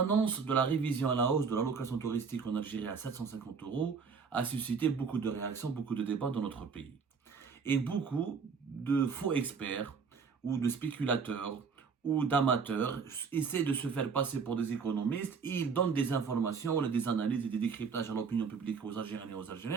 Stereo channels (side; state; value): left; quieter; 5.6 dB